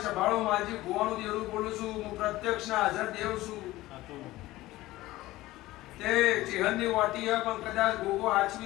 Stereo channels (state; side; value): quieter; right; 17.5 dB